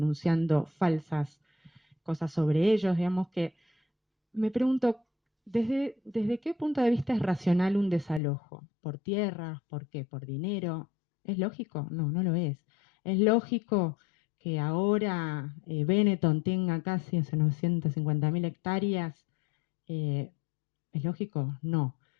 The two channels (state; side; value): drops out; right; at 8.2 s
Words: falsas cosas sobre ellos, digamos que me pregunto, ¿desde qué punto de vista es racional un desalojo? ¿Por tierra? ¿Por qué? ¿Por dinero? ¿Es lógico? No, no lo es. ¿Es lógico que ahora Benetton tenga casi 950.000 hectáreas? Eh, ¿Es lógico? No.